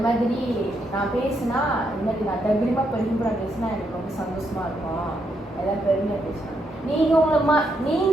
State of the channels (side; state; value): both; normal; correlation 0.78